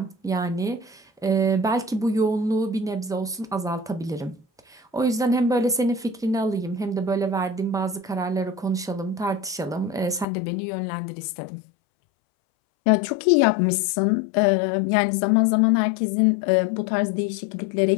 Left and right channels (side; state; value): right; drops out; at 10.2 s